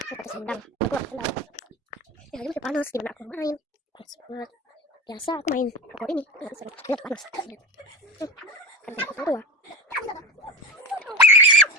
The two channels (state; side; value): normal; both; correlation 0.25